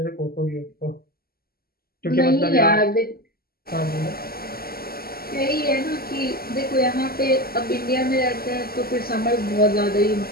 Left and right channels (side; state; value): right; late; 0.44 ms